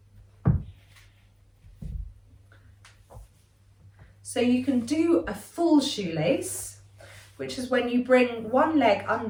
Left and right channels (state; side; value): identical; both; correlation 1.00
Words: So you can do a full shoelace, which is when you bring one leg